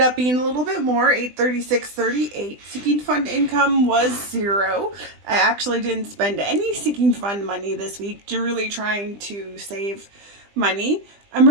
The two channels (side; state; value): left; late; 20 ms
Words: up being a little bit more, $836.38. Sinking fund income was $0. I actually didn't spend any sinking fund money this week, really trying to save money.